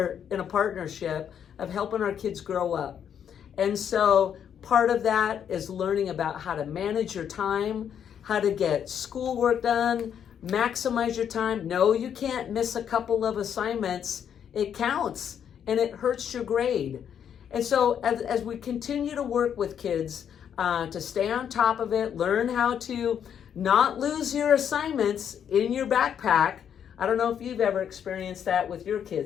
in a partnership of helping our kids grow up. And so part of that is learning about how to manage your time, how to get schoolwork done, maximize your time. No, you can't miss a couple of assignments. It counts and it hurts your grade. And so as we continue to work with kids to stay on top of it, learn how to not lose your assignments in your backpack. I don't know if you've ever experienced that with your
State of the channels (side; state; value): right; quieter; 8.6 dB